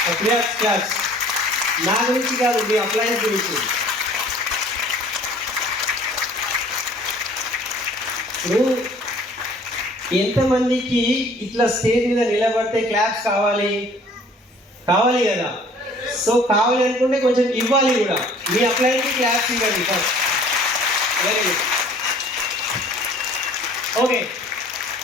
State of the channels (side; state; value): both; normal; correlation 0.52